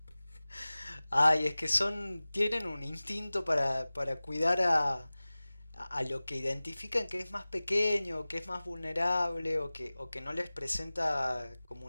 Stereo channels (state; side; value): inverted; both; correlation -0.98